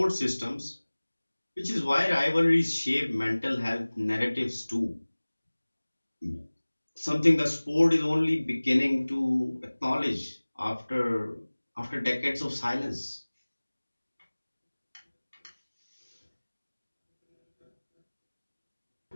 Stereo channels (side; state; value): both; inverted; correlation -1.00